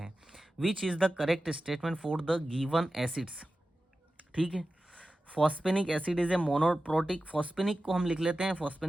Which is the correct statement for the given acids, ठीक है। फॉस्फेनिक एसिड इज ए मोनोप्रोटिक, फॉस्फेनिक को हम लिख लेते हैं,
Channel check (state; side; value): normal; both; correlation 0.94